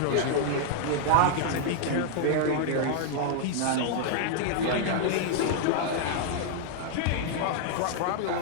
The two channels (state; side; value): different; both; correlation 0.00